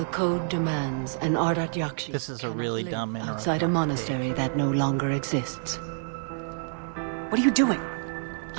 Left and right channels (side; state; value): left; silent; digital silence